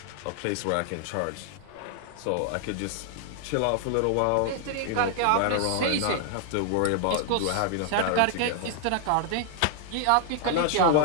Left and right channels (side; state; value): both; different; correlation 0.00